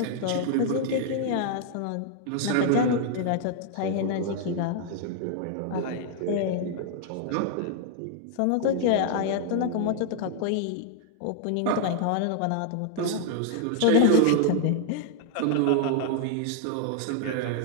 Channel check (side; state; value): both; different; correlation 0.00